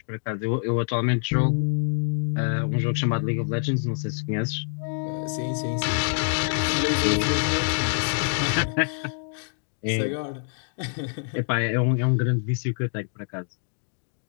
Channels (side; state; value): right; silent; digital silence